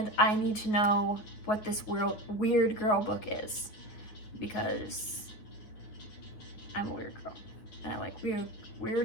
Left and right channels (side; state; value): right; late; 9.5 ms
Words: I need to know what this weird girl book is, because I'm a weird girl and I like